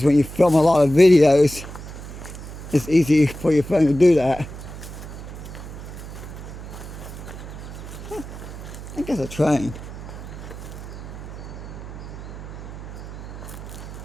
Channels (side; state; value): right; noise; hum, 11 dB below the sound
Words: when you film a lot of videos, it's easy for your phone to do that. I think it's a train.